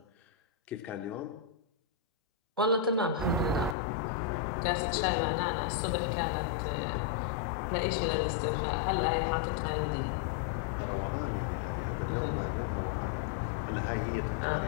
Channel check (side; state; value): right; drops out; at 3.8 s